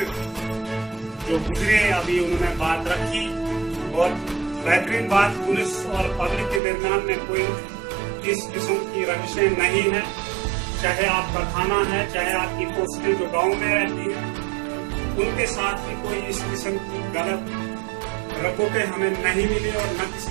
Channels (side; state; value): left; drops out; at 6.6 s